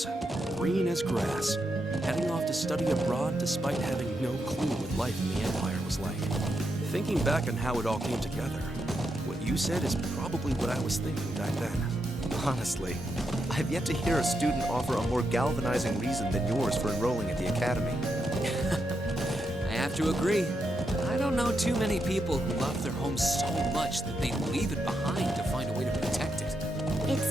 green as grass, heading off to study abroad despite having no clue what life in the Empire was like. Thinking back on how it all came together, what you said is probably what I was thinking back then. Honestly, I've yet to hear a student offer a more galvanizing reason than yours for enrolling at the academy. I have to agree. I don't know too many people who love their home so much that they'd leave it behind to find a way to protect it.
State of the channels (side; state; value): both; normal; correlation 0.83